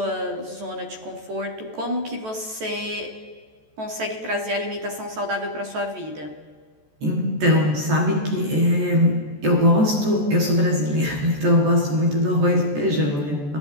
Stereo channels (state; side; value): late; left; 14 ms